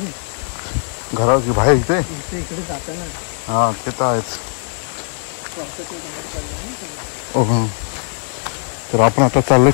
घराची बाहेर इथे इकडे जाताना हां ते तर आहेच. हो, तर आपण आता चाललो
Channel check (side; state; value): right; silent; 66 dB below the other